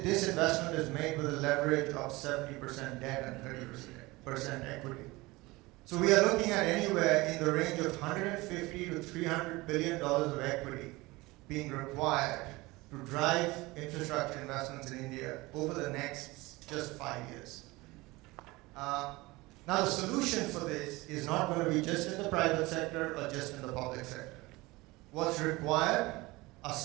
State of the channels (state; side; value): quieter; left; 21.7 dB